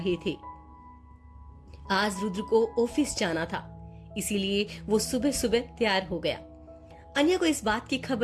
थे। आज रुद्र को ऑफिस जाना था, इसीलिए वो सुबह सुबह तैयार हो गया। अन्या को इस बात की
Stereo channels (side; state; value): both; identical; correlation 1.00